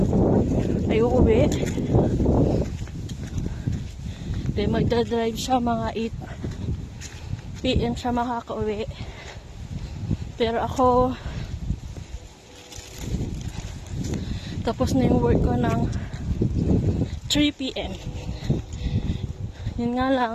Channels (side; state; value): both; identical; correlation 1.00